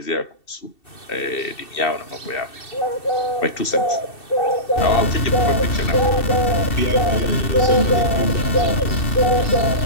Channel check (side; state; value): right; late; 2.7 ms